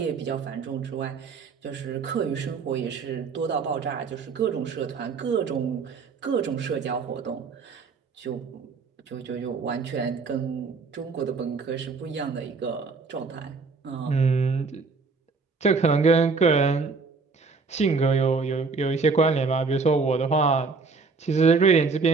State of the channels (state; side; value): quieter; left; 4.6 dB